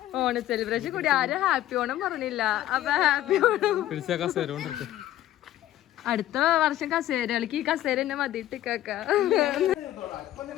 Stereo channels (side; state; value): right; quieter; 13.6 dB